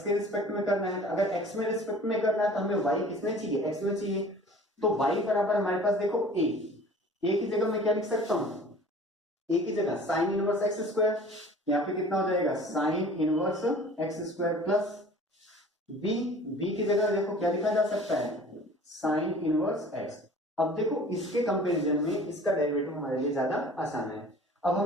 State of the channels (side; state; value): both; normal; correlation 0.46